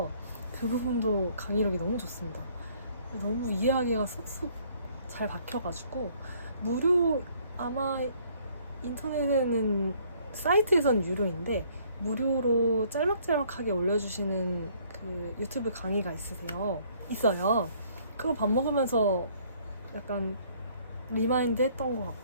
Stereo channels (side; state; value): both; inverted; correlation -0.61